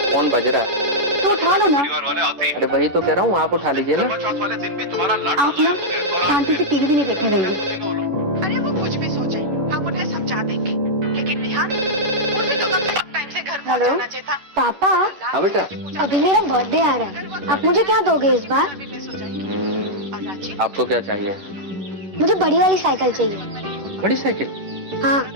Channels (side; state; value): left; late; 11 ms